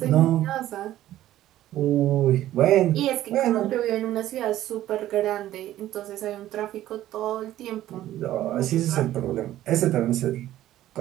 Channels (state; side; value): quieter; left; 13.7 dB